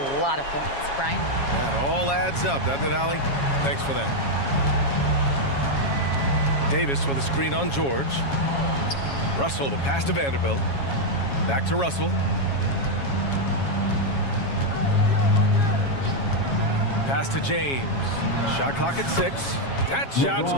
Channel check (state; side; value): late; right; 7.3 ms